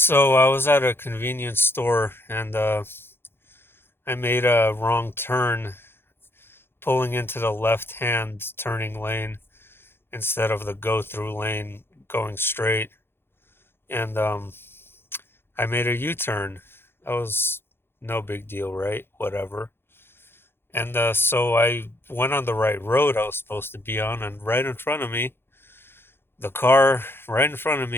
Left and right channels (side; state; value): right; late; 0.11 ms